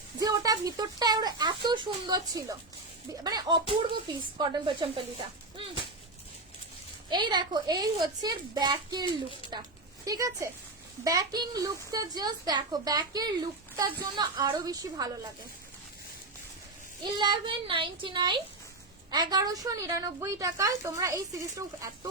যে ওটা ভিতরটা এত সুন্দর ছিল, মানে অপূর্ব পিস কটন পোচমপল্লিটা। এই দেখো, এই হচ্ছে ব্যাকের লুকটা, ঠিক আছে, ব্যাকিং লুকটা জাস্ট দেখো, ব্যাকের লুকটার জন্য আরো বেশি ভালো লাগে। 1199, 1199 টাকায় তোমরা এই সিরিজটা, এত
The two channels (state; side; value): quieter; left; 3.1 dB